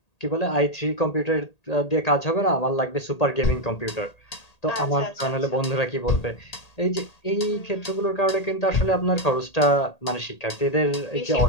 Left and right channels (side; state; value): right; late; 1.8 ms